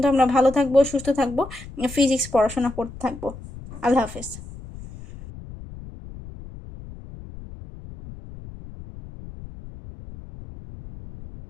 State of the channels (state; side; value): noise; left; rumble, 15 dB below the sound